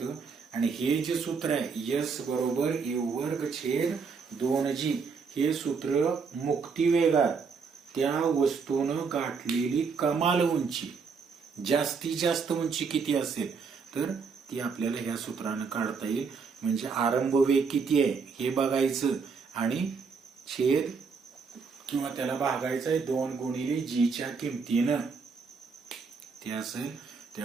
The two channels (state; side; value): quieter; left; 5.3 dB